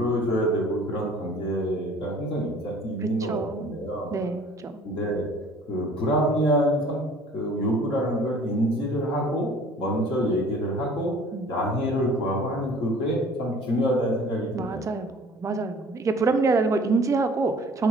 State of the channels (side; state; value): both; normal; correlation 0.50